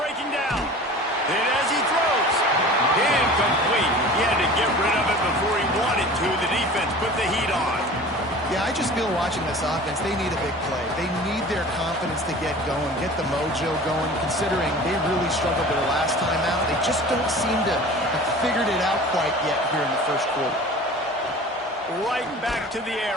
down. And as he throws, incomplete. He had to get rid of it before he wanted to. The defense put the heat on. Yeah, I just feel watching this offense, they need a big play. They need their confidence to get going, get the mojo going, considering they really struggled their last time out. They just don't seem to have figured it out quite yet here in the first quarter. Right back to the air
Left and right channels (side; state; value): both; normal; correlation 0.40